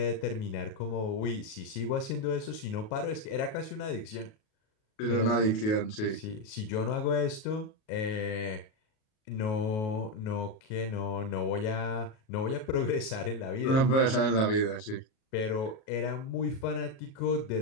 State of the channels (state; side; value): late; right; 37 ms